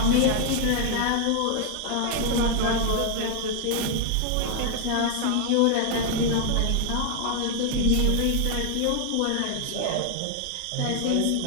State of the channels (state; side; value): different; both; correlation 0.00